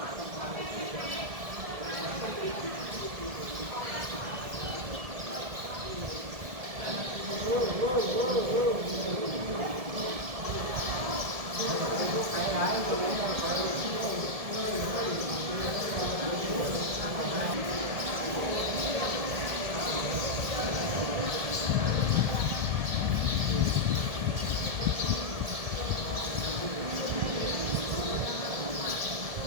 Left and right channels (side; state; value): left; late; 1.7 ms